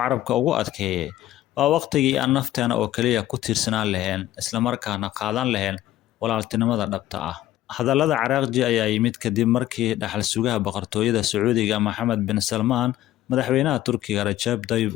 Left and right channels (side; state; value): right; quieter; 14.0 dB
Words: ugu adkeeyey, waa waqtigii aan nafteena oo keliya ku tiirsanaan lahayn, islamarkaana qaadan lahayn walaaltinimada dhabta ah. Hadallada Araghchi ayaa yimid kadib markii dhaxal sugaha boqortooyada Sacuudiga Mohammed bin Salmaan, madaxweynaha Turkiga Rajab Tayyip